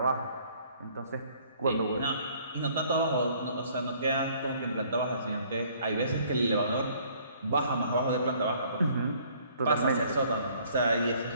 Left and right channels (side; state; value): both; inverted; correlation -0.59